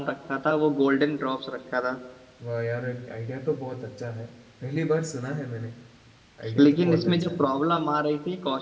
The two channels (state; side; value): identical; both; correlation 1.00